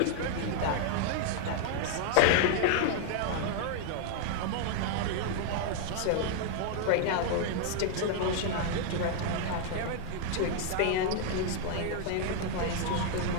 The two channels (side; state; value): both; different; correlation 0.00